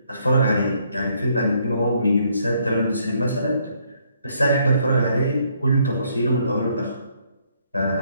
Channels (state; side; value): inverted; both; correlation -0.70